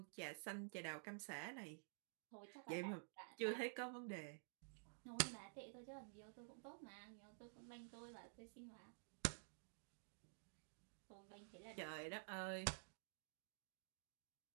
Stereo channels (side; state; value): left; silent; digital silence